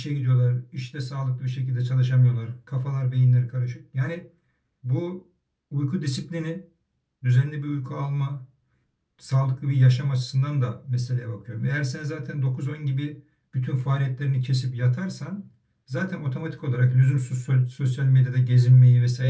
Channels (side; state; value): both; identical; correlation 1.00